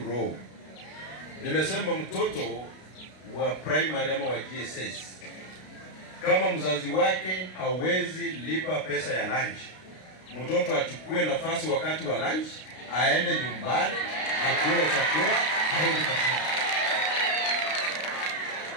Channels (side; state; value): right; late; 32 ms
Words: roho. Nimesema mtoto wa primary ama wa GSS, kama mzazi wake hawezi lipa pesa ya lunch, mtoto achukue nafasi wakati wa lunch, aende nyumbani, akule chakula, aende kazini.